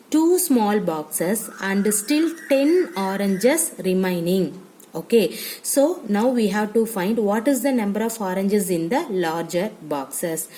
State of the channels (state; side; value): identical; both; correlation 1.00